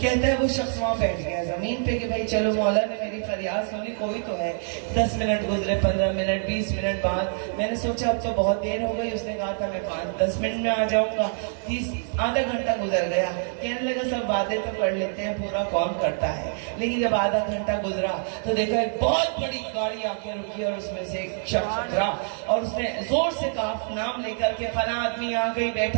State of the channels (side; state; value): left; silent; 61 dB below the other